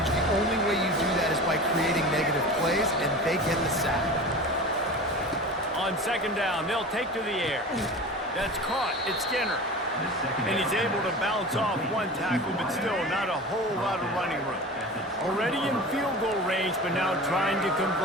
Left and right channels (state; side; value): normal; both; correlation 0.34